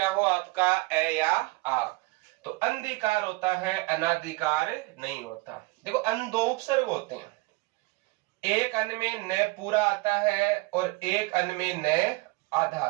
हो आपका? ए या आ। तो अंधिकार होता है, अनाधिकार नहीं होता। देखो, अन दो उपसर्ग होते हैं, एक अन में न पूरा आता है और एक अन में न आधा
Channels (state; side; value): quieter; left; 23.7 dB